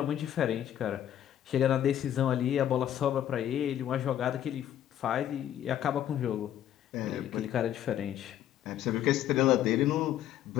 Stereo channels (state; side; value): quieter; right; 11.1 dB